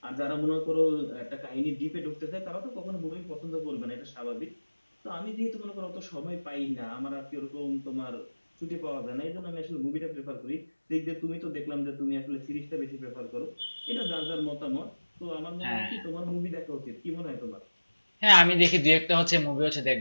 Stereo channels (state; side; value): inverted; both; correlation -1.00